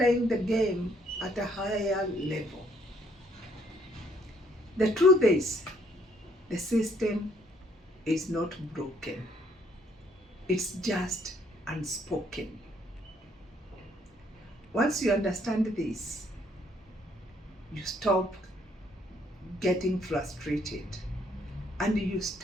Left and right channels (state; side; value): normal; both; correlation 0.67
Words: the game at a higher level. The truth is, the system is not broken. It's just unspoken. Once you understand this, you stop getting frustrated and you